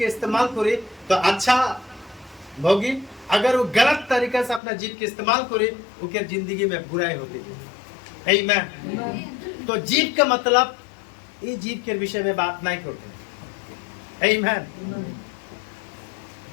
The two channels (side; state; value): right; drops out; at 4.6 s